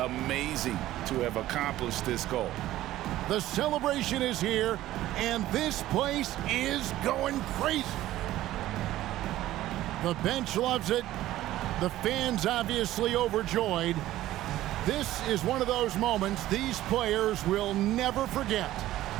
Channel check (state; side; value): quieter; left; 14.8 dB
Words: to have accomplished this goal. The celebration is here, and this place is going crazy. The bench loves it. The fans obviously overjoyed. This is one of those moments these players will never forget.